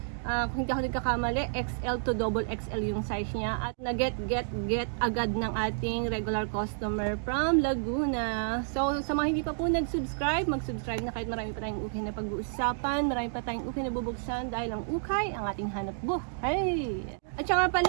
Kung hindi ako nagkakamali, XL to double XL yung size niya. At na-get agad ng ating regular customer from Laguna. So, sa mga hindi pa po nag-subscribe, mag-subscribe na kahit marami pa tayong ukay na pag-uusapan. Marami pa tayong ukay na bubuksan dahil ang ukay, ang ating hanap buhay. At saka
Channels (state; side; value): silent; left; digital silence